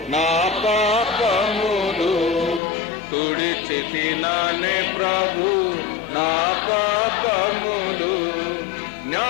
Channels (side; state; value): right; drops out; at 2.6 s